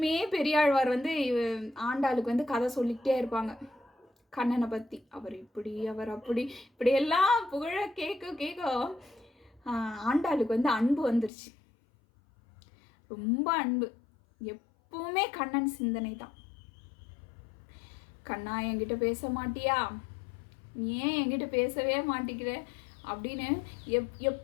பெரியாழ்வார் வந்து ஆண்டாளுக்கு வந்து கதை சொல்லிக்கிட்டே இருப்பாங்க கண்ணனை பற்றி. அவர் இப்படி, அவர் அப்படி, இப்படியெல்லாம் புகழ கேட்க ஆண்டாளுக்கு வந்து அன்பு வந்துருச்சு. ரொம்ப அன்பு. எப்பவுமே கண்ணன் சிந்தனை தான். கண்ணா, என்கிட்ட பேச மாட்டியா? நீ ஏன் என்கிட்ட பேசவே மாட்டேங்கிற அப்படின்னு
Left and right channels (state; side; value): drops out; right; at 11.3 s